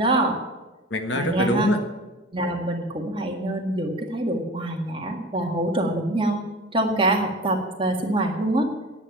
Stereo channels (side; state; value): both; normal; correlation 0.37